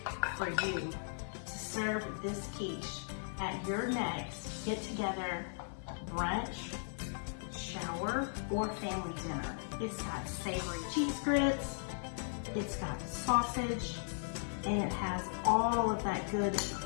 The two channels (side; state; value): right; silent; 53 dB below the other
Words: for you to serve this quiche at your next get-together, brunch, shower, or family dinner. It's got savory cheese grits, it's got sausage, and it has all of that good